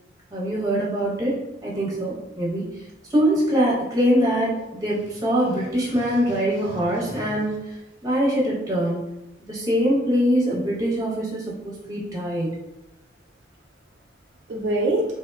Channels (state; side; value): normal; both; correlation 0.64